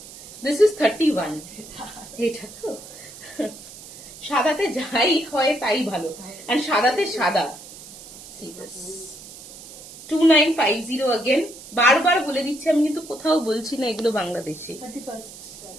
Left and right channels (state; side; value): noise; right; hiss, 16 dB below the sound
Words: This is 31. এটা তো সাদাতে যাই হয় তাই ভালো, and সাদাতে সাদা। See this. 2950 again. বারবার বলে দিচ্ছি আমি, কিন্তু কোথাও বলছি না এগুলো বাংলাদেশি।